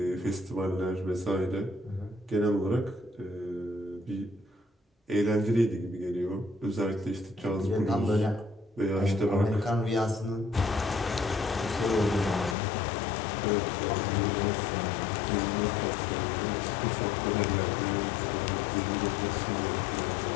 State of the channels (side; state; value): right; drops out; at 12.6 s